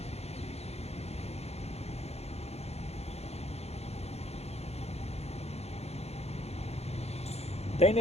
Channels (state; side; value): late; right; 0.30 ms